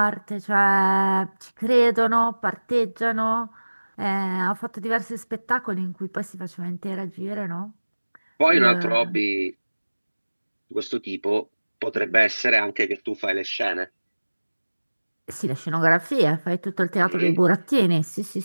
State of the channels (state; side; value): inverted; both; correlation -1.00